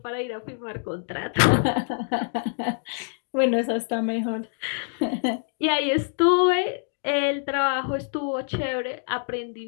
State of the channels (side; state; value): right; silent; digital silence